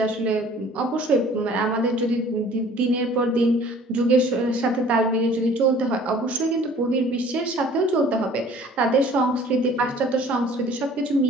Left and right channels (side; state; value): both; normal; correlation 0.51